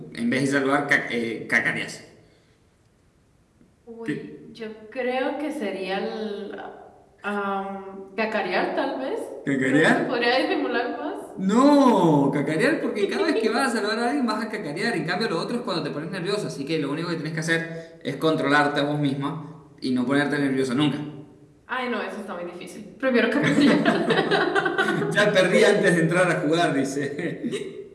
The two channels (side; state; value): both; identical; correlation 1.00